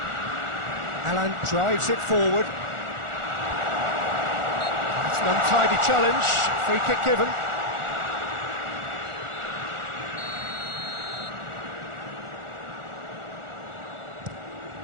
Alan drives it forward. It's an untidy challenge. Free kick given.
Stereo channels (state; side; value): late; left; 1.4 ms